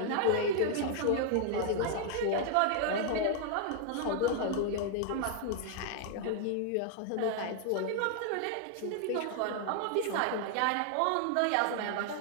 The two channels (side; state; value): both; different; correlation 0.00